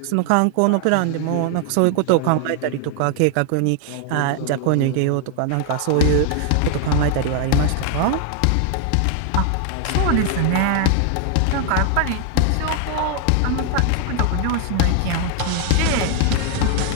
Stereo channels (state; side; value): different; both; correlation 0.00